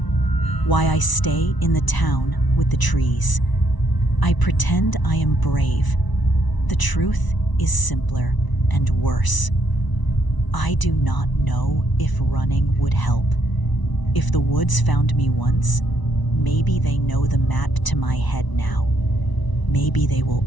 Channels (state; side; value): late; right; 1.0 ms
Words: why I stay in the town with the trees. I pretend I am brave. The truth is simpler and worse. I do not know if running would help. If the woods found me once, maybe they know the map to my head now. Maybe they will